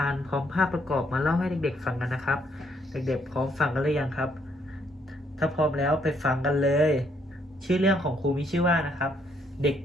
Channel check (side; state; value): both; normal; correlation 0.70